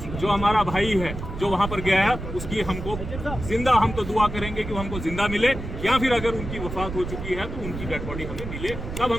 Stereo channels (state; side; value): noise; right; rumble, 8 dB below the sound